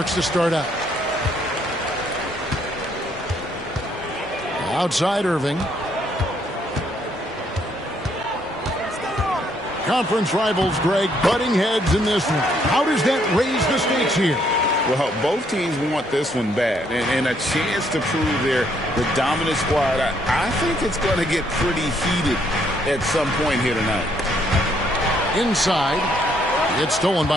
to start out. Outside Irving. Conference rivals, Greg, butting heads in this one. How does that raise the stakes here? Well, both teams want this one bad, and a chance to prove they're the dominant squad. I think it's going to get pretty heated at some point here tonight. Inside, it's stolen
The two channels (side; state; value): both; normal; correlation 0.70